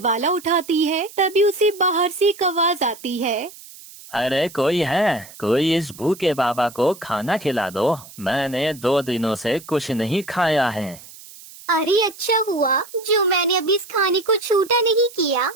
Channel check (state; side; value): noise; right; hiss, 19 dB below the sound